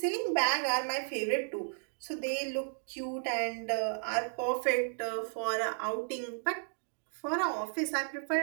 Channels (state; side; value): silent; left; digital silence